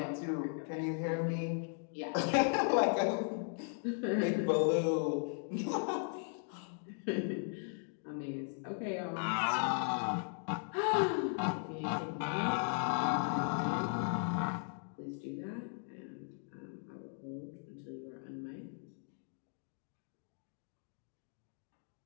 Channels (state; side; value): silent; right; 53 dB below the other